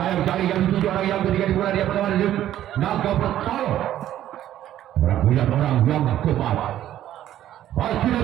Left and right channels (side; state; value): left; quieter; 12.2 dB